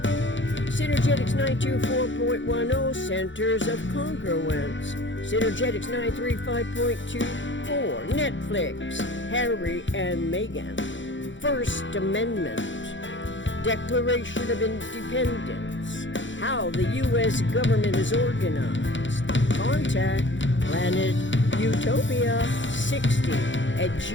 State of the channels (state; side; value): late; right; 0.55 ms